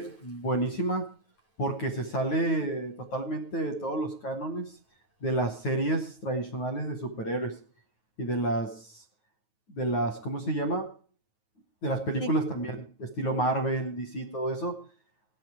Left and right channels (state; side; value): late; right; 9.3 ms